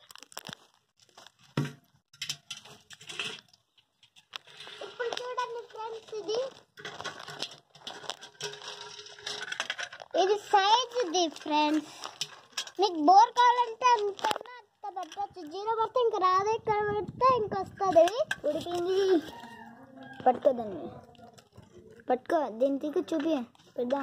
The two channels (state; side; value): identical; both; correlation 1.00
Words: ఇప్పుడు చూడండి ఫ్రెండ్స్, ఇది సైజ్ ఫ్రెండ్స్. మీకు బోర్ కావాలంటే అంత పెట్టచ్చు, 0 పడితే ఇంకా రాదు, ఇక్కడ పెడితే ఇంకా వస్తుంది. ఉడికింది పట్టుకోదండి, పట్టుకో దీనికి చూపి